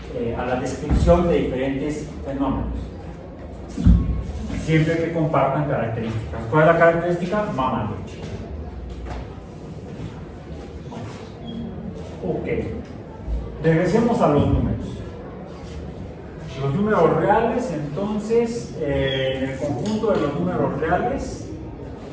a la descripción de diferentes fenómenos, siempre que compartan características. ¿Cuál es la característica? Mamaluchi. Ok, regresemos a los números. Los números reales, entonces, en el conjunto de los números reales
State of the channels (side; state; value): both; identical; correlation 1.00